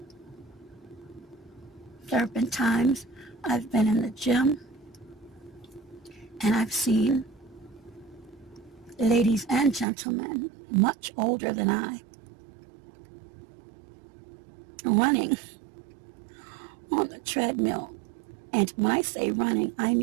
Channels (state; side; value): drops out; left; at 9.9 s